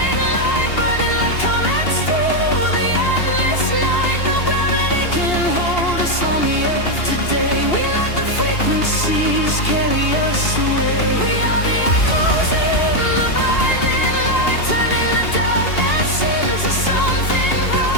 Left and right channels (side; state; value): right; late; 2.8 ms